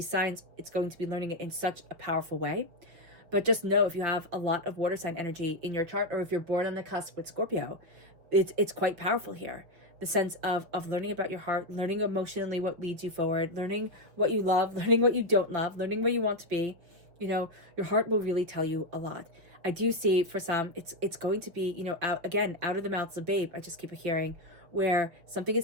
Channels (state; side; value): late; left; 6.0 ms